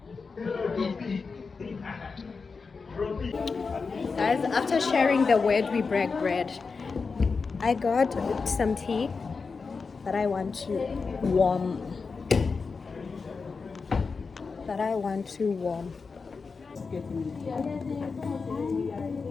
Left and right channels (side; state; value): right; quieter; 4.8 dB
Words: Guys, after sharing the word, we break bread. I got some tea that I want to warm.